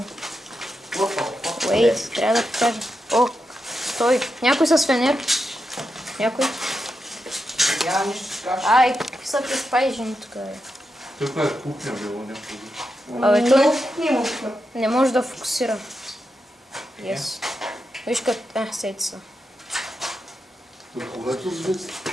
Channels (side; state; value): both; normal; correlation 0.87